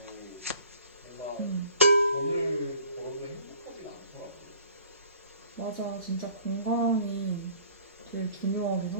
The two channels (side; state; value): both; inverted; correlation -0.53